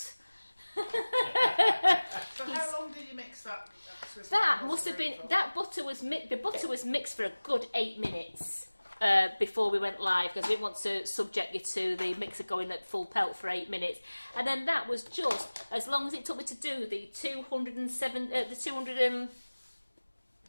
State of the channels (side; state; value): both; inverted; correlation -1.00